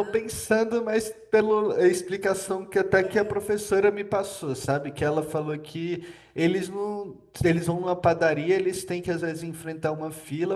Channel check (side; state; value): both; identical; correlation 1.00